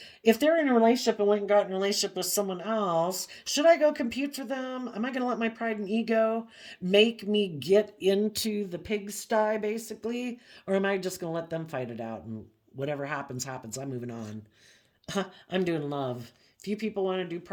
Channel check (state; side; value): identical; both; correlation 1.00